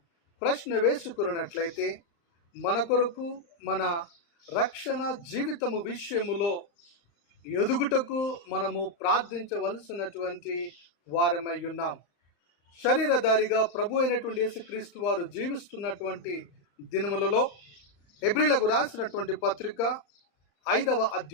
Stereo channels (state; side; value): late; right; 35 ms